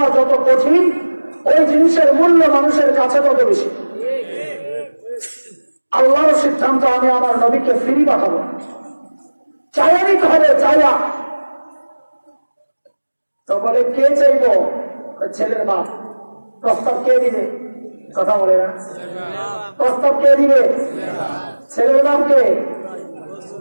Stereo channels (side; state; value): both; inverted; correlation -1.00